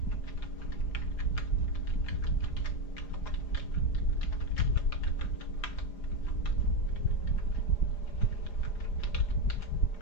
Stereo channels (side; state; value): right; late; 4.9 ms